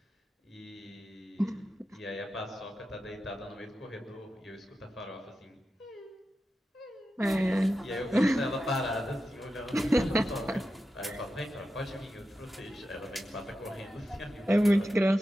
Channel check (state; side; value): normal; both; correlation 0.91